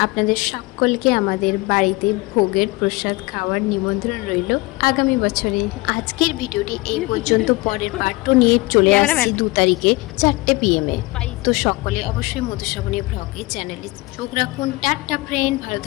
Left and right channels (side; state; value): right; quieter; 22.8 dB